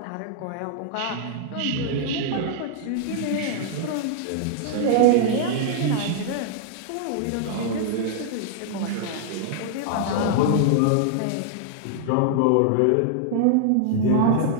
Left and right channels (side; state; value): both; different; correlation -0.01